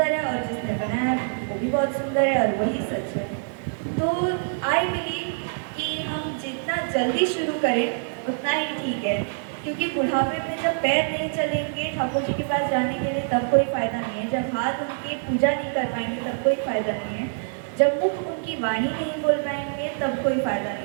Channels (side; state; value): left; silent; digital silence